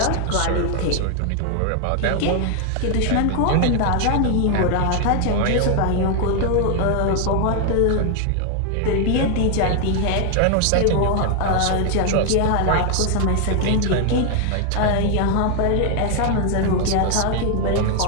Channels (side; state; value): both; different; correlation 0.00